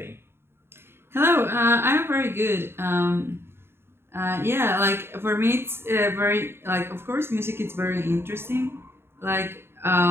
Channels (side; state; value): left; late; 0.11 ms